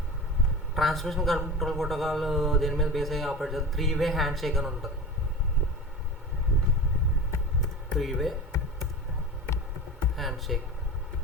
ప్రోటోకాల్ దేని మీద బేస్ అయ్యి ఆపరేట్ చేస్తుంది. 3-వే హ్యాండ్ షేక్ అని ఉంటుంది. 3-వే handshake.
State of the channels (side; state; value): both; normal; correlation 0.31